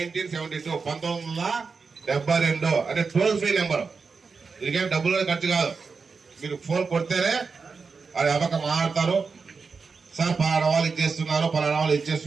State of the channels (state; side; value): quieter; left; 4.9 dB